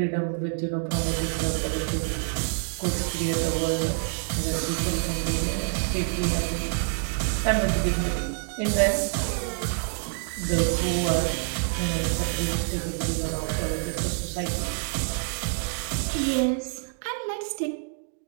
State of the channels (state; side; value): silent; left; digital silence